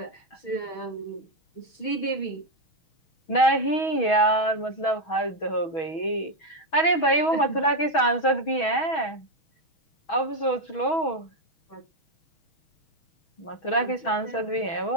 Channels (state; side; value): late; right; 6.2 ms